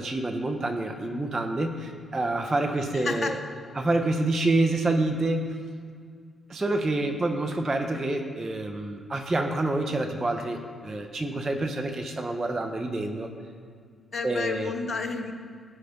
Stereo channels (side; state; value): both; normal; correlation 0.85